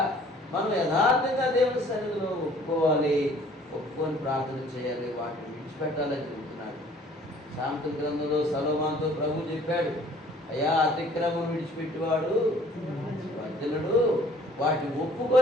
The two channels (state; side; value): normal; both; correlation 0.55